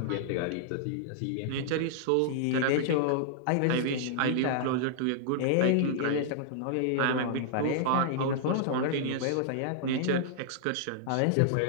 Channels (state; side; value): different; both; correlation -0.01